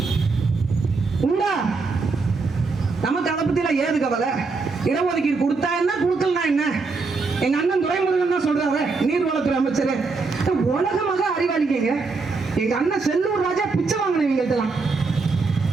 உண்டா? நமக்கு அதை பத்தில ஏது கவலை? இடஒதுக்கீடு கொடுத்தா என்ன, கொடுக்கலனா என்ன? எங்க அண்ணன் துரைமுருகன் தான் சொல்றாரு, நீர்வளத்துறை அமைச்சர். உலகமாக அறிவாளிங்க. எங்க அண்ணன் செல்லூர் ராஜா பிச்சை வாங்கினவங்கள்ட்டலாம்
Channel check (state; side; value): quieter; left; 4.2 dB